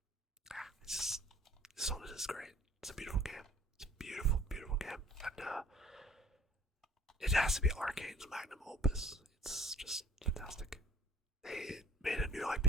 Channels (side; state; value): both; normal; correlation 0.52